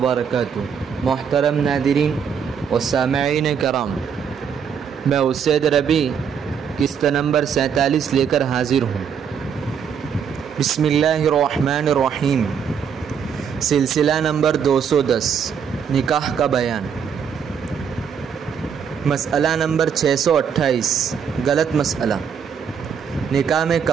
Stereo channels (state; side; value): quieter; left; 7.3 dB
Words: محترم ناظرین و سامعین کرام، میں اسید ربی قسط نمبر 47 لے کر حاضر ہوں۔ بسم اللہ الرحمن الرحیم۔ سلسلہ نمبر 210، نکاح کا بیان۔ مسئلہ نمبر 628، غلط مسئلہ۔ نکاح میں